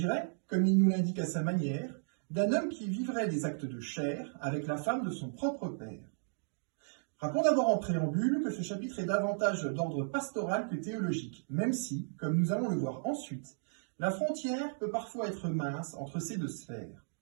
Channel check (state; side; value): silent; left; digital silence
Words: comme il nous l'indique à sa manière, d'un homme qui vivrait des actes de chair avec la femme de son propre père. Rappelons d'abord en préambule que ce chapitre est davantage d'ordre pastoral que théologique, même si, comme nous allons le voir ensuite, la frontière peut parfois être mince entre ces deux sphères.